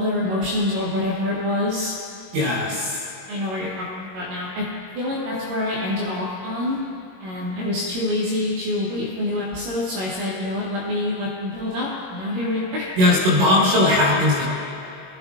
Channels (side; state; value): left; late; 21 ms